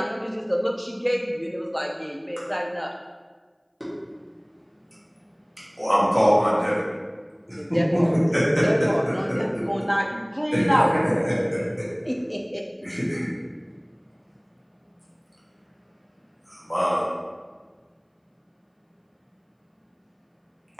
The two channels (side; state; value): both; identical; correlation 1.00